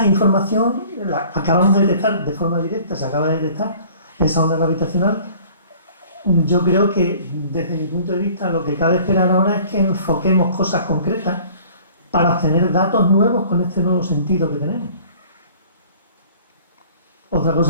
información la acabamos de detectar de forma directa, se acaba de detectar esa onda gravitacional. Yo creo que desde mi punto de vista lo que cabe esperar ahora es que enfoquemos cosas concretas para obtener datos nuevos con este nuevo sentido que tenemos. Otra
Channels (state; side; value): inverted; both; correlation -0.50